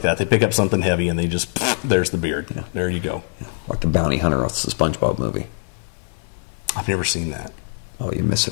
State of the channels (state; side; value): silent; right; digital silence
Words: that. They pick up something heavy and they just there's the beard. Yeah. There you go. Like the bounty hunter off the SpongeBob movie. I've never seen that. Oh, you're